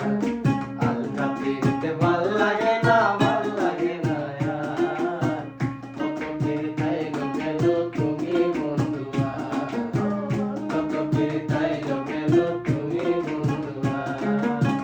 আলগা পিরিতে ভাল লাগে না, ভাল লাগে না আর, কত পিরিতাইলো গেল তুমি বন্ধু আর, কত পিরিতাইলো গেল তুমি বন্ধু আর।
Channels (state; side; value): identical; both; correlation 1.00